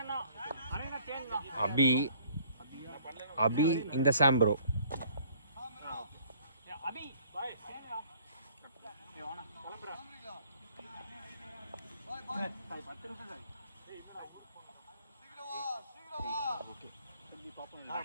அபி அபி இந்த சாம் ப்ரோ.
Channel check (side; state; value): both; inverted; correlation -0.57